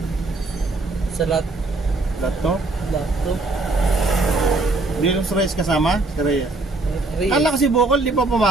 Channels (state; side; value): quieter; left; 3.2 dB